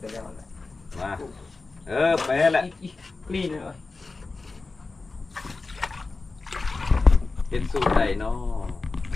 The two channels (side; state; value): right; quieter; 3.8 dB